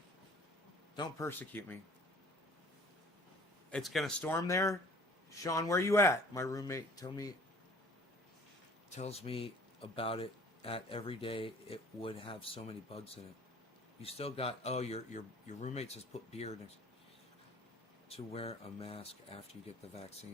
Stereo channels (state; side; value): normal; both; correlation 0.52